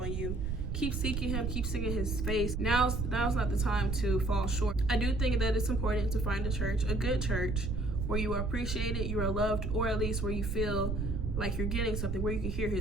you. Keep seeking him, keep seeking his face. Now's not the time to fall short. I do think that it's important to find a good church, where you are appreciated, you are loved, or at least where you feel like you're getting something, where you can hear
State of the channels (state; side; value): noise; right; rumble, 1 dB below the sound